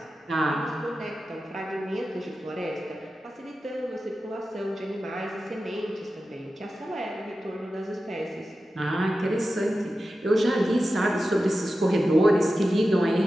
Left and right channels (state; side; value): normal; both; correlation 0.93